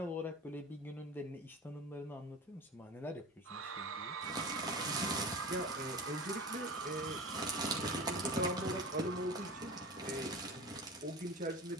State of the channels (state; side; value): normal; both; correlation 0.33